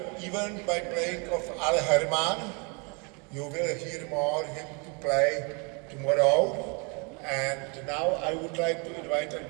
event by playing of Al Herman. You will hear more him to play tomorrow. And now I would like to invite on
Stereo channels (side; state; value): left; quieter; 32.8 dB